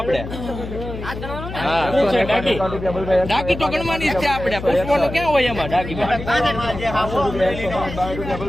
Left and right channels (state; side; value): noise; left; hum, 9 dB below the sound